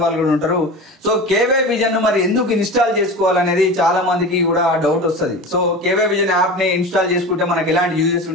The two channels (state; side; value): normal; both; correlation 0.31